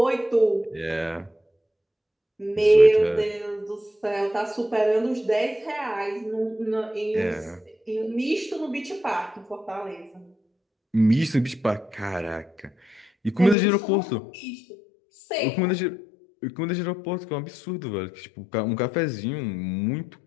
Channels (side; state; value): right; drops out; at 13.6 s